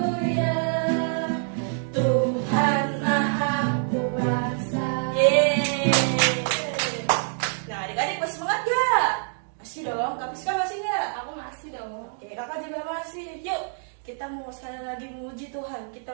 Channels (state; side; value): silent; left; digital silence